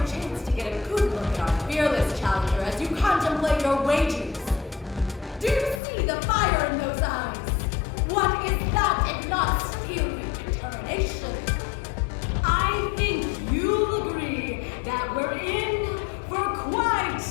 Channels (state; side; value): drops out; right; at 5.8 s